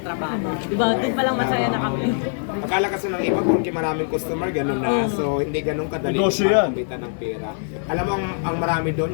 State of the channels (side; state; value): right; silent; 64 dB below the other